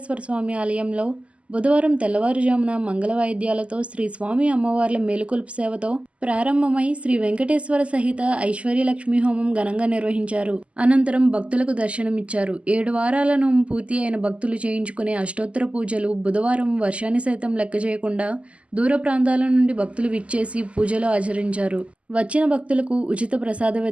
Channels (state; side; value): late; left; 0.060 ms